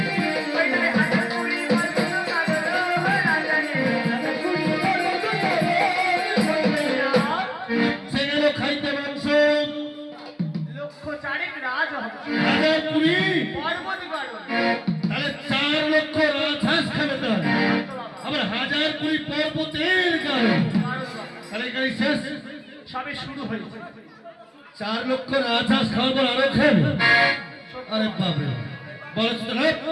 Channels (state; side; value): identical; both; correlation 1.00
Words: সবে শুরু হয়েছে। 4 লক্ষ রাজহাঁস খাওয়ার পর আরো খাবে? আরে বাবা, বলছ তো না